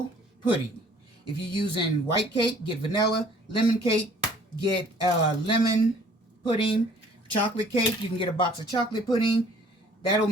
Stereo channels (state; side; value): normal; both; correlation 0.55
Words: pudding. If you're using white cake, get vanilla. Lemon cake, get lemon pudding. Chocolate cake, you can get a box of chocolate pudding. That'll